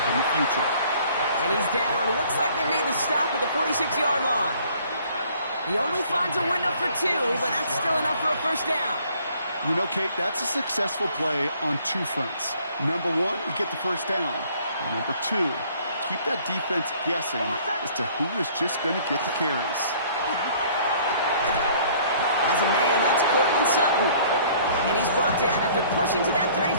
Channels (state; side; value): inverted; both; correlation -0.57